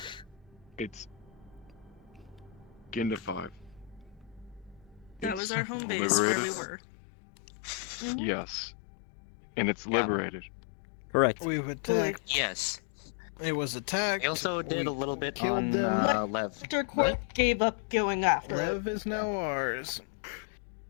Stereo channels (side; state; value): right; drops out; at 5.4 s